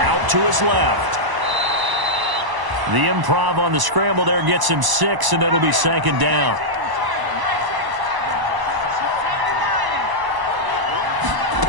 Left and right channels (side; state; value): left; late; 1.0 ms